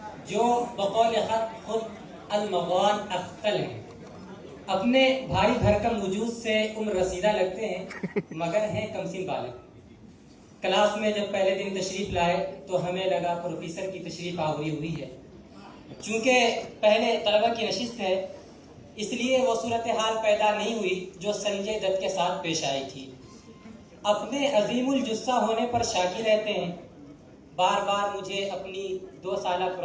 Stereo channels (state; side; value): identical; both; correlation 1.00